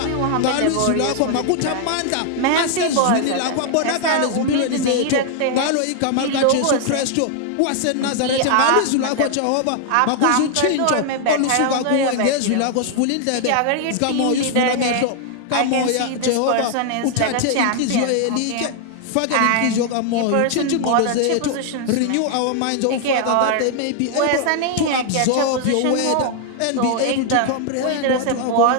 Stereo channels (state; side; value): different; both; correlation 0.00